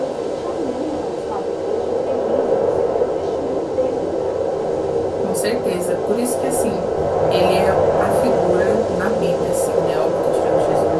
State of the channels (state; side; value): identical; both; correlation 1.00